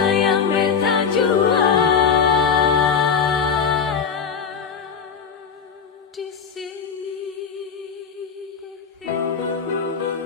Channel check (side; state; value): right; quieter; 6.4 dB